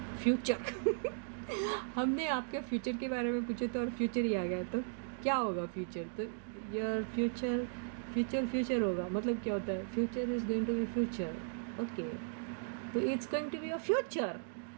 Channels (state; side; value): silent; left; digital silence